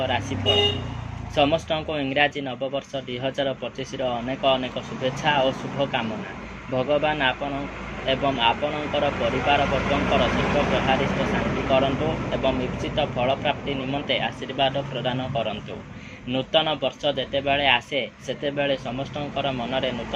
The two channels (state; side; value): identical; both; correlation 1.00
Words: राशिफल। समस्त को इंग्राजी नववर्ष 2025 अनेक अनेक शुभेच्छा और शुभकामना। भगवान आपण एवं आपणकर परिवार वर्गंकर सर्वप्रहारिष्ट शांति करंतु एवं इप्सित फल प्राप्ति निमंते आशीर्वाद प्रदान करंतु। नूतन वर्ष जेतेबेले आसे सेतेबेले समस्तंकर मनरे